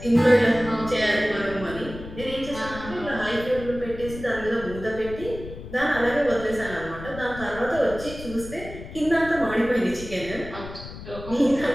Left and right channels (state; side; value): noise; left; rumble, 12 dB below the sound